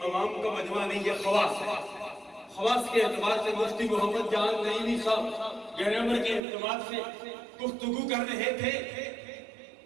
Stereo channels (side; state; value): left; drops out; at 6.4 s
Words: عوام کا مجمع نہیں، یہ خواص ہے۔ خواص کے اعتبار سے مفتی محمد جان نعیمی صاحب گرامر کے اعتبار سے گفتگو کر رہے تھے۔